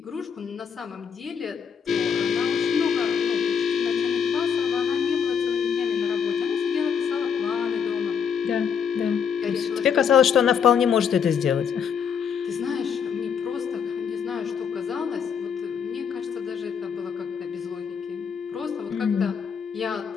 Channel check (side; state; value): right; quieter; 7.0 dB